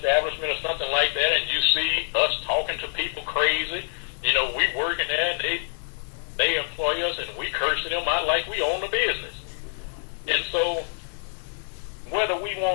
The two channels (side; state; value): right; silent; digital silence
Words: or something like that and you see us talking to people crazy. You know, we working there and they employ us and we cursing them out like we own the business. And so whether we